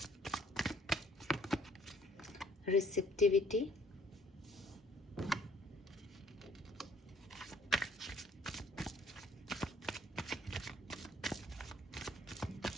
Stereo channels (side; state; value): both; normal; correlation 0.61